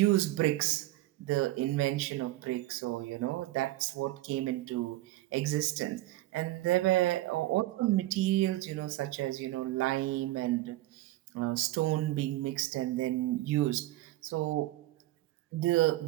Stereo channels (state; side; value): quieter; left; 16.9 dB